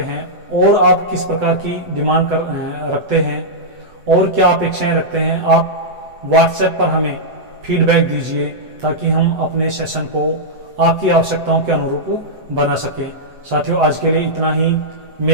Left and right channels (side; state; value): left; late; 8.0 ms